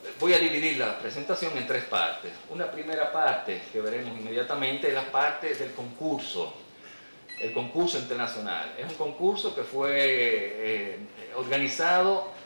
Voy a dividir la presentación en 3 partes. Una primera parte que veremos inmediatamente es la parte del concurso, el concurso internacional. Es un concurso que fue organizado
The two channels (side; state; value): both; inverted; correlation -1.00